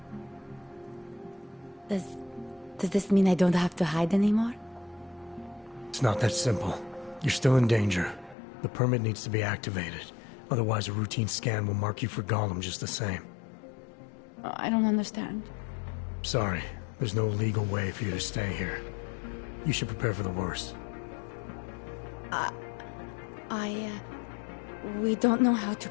Does this mean I don't have to hide anymore? It's not that simple. You're still in danger. The permit needs to be activated. Otherwise, a routine scan will mark you for Golem just the same. I don't understand. Sorry. There's no legal way for you to stay here. You should prepare for the worst. We don't know how to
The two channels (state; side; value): drops out; right; at 8.3 s